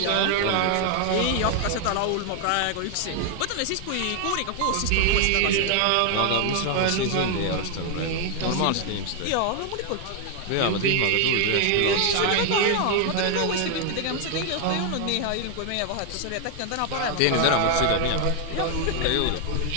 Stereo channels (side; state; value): both; different; correlation 0.00